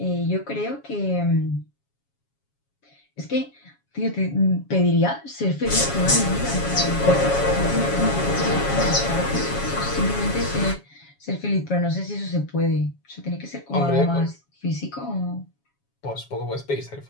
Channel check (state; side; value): late; right; 7.2 ms